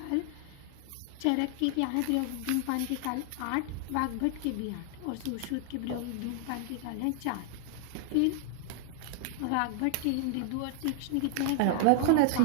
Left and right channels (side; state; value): both; different; correlation 0.00